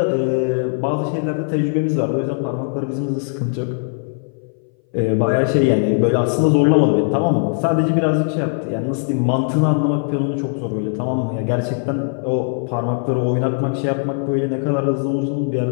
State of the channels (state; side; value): silent; right; 61 dB below the other